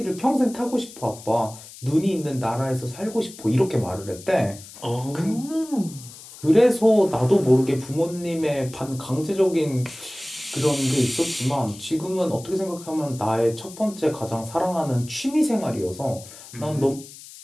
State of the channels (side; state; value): left; noise; hiss, 17 dB below the sound